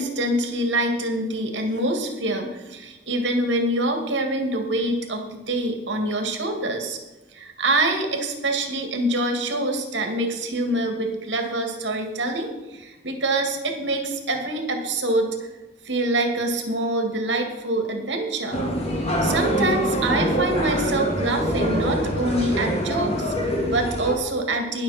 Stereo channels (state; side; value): normal; both; correlation 0.24